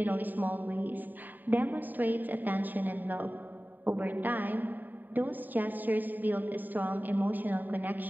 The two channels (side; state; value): left; late; 0.089 ms